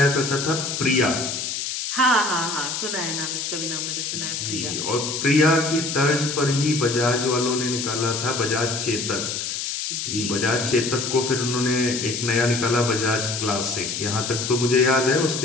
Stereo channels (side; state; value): left; noise; hiss, 3 dB below the sound